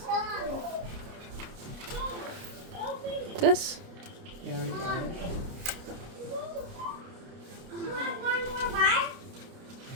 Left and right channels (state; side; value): late; left; 29 ms